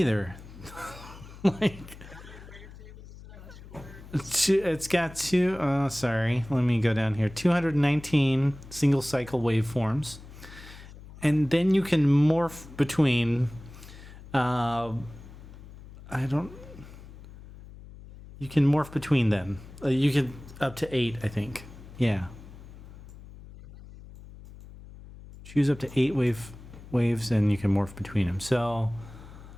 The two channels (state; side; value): noise; left; hum, 17 dB below the sound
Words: Like it's got two. Oh, sorry. Let me go down here. 219 single cycle waveforms, and then you can morph between. You can morph between them. You can up to 8, I think. Yeah. Choose up to 8 waves, and you can morph between them. So,